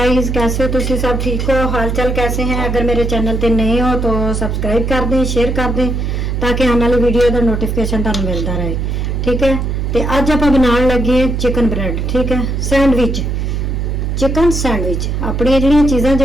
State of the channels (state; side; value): noise; right; hum, 1 dB below the sound